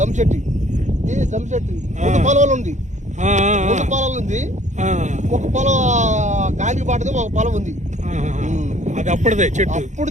పొలాలు ఉంది, ఒక పొలం గాలికి పాటది, ఒక పొలం ఉంది. అది అప్పుడుదే చెట్టు.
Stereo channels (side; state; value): left; late; 0.35 ms